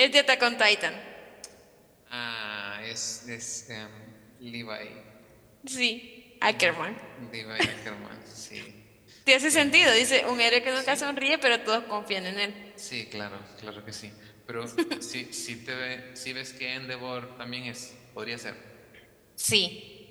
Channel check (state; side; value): identical; both; correlation 1.00